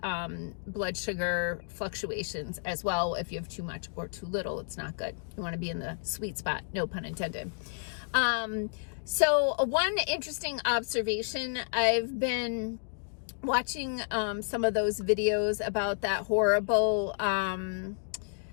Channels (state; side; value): silent; right; digital silence